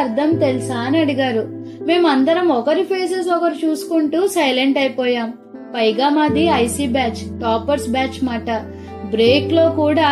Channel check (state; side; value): identical; both; correlation 1.00